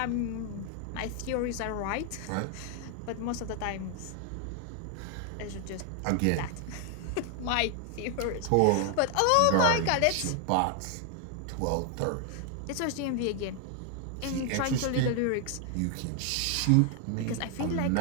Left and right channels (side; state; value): both; different; correlation 0.00